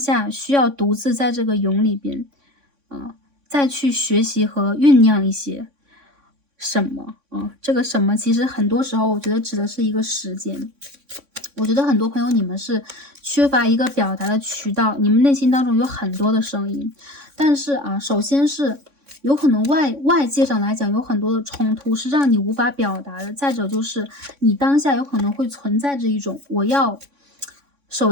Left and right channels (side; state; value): left; late; 3.6 ms